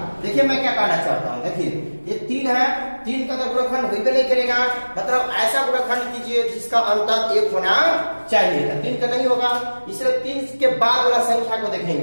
देखिए मैं क्या कहना चाहता हूँ, देखिए ये 3 है, 3 का तो गुणनखंड होइबे नहीं करेगा, मतलब ऐसा गुणनखंड कीजिए जिसका अंतर 1 होना चाहिए। 3 का नहीं होगा, इसलिए 3 के बाद वाला संख्या को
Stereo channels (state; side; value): inverted; both; correlation -1.00